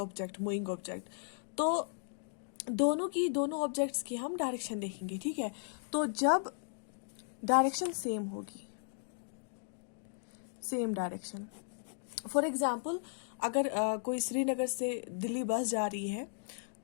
moving object, तो दोनों ऑब्जेक्ट्स की हम डायरेक्शन देखेंगे। ठीक है, तो जब डायरेक्शन सेम होगी, सेम डायरेक्शन, फॉर एग्जाम्पल अगर कोई श्रीनगर से दिल्ली बस जा रही है,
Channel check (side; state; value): right; silent; digital silence